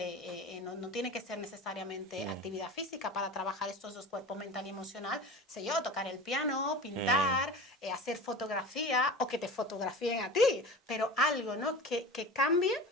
no tiene que ser necesariamente actividad física para trabajar estos dos cuerpos, mental y emocional, sé yo, tocar el piano, pintar, hacer fotografía, o que te fotografíen a ti, pero algo, ¿no? Que cambie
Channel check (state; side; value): normal; both; correlation 0.34